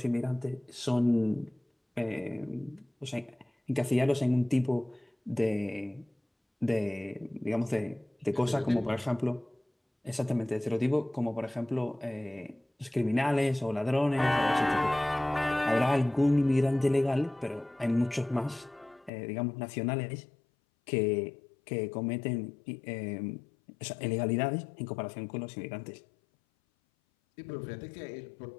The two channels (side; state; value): right; drops out; at 19.1 s